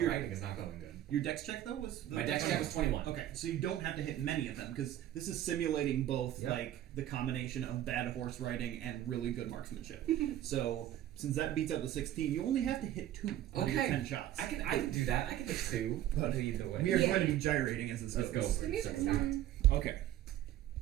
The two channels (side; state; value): left; quieter; 12.6 dB